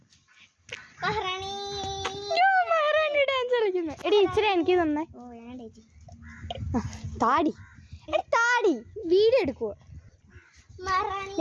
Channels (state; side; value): identical; both; correlation 1.00